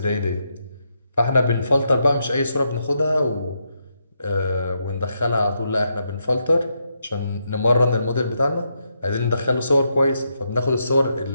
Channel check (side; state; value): both; inverted; correlation -0.81